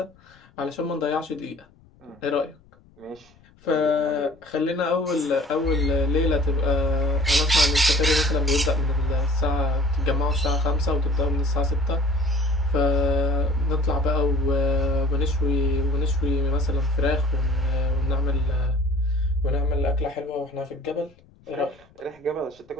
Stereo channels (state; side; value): noise; left; rumble, 29 dB below the sound